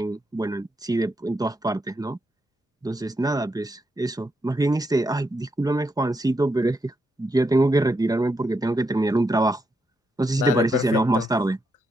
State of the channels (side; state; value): both; normal; correlation 0.81